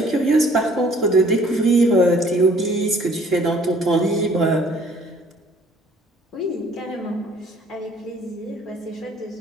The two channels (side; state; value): both; normal; correlation 0.57